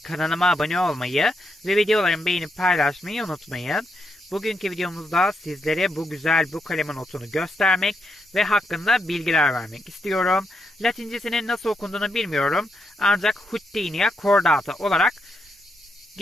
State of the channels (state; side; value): normal; both; correlation 0.81